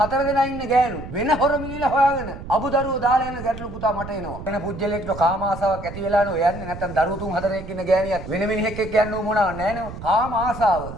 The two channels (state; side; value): noise; right; rumble, 11 dB below the sound